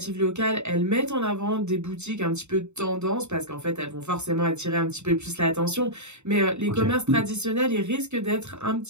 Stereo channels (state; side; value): late; left; 0.82 ms